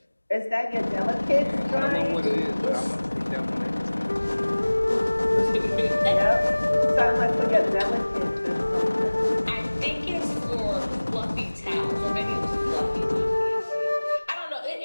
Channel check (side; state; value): both; inverted; correlation -1.00